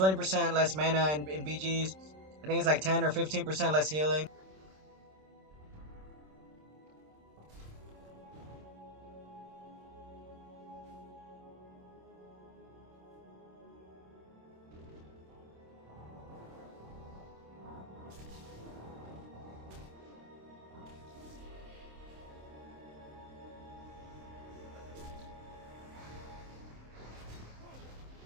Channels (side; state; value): left; late; 26 ms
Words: less mana in BGs. I think it's like 10 or 15% less healing.